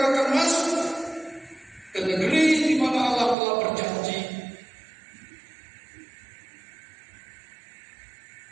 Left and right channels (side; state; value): left; drops out; at 3.4 s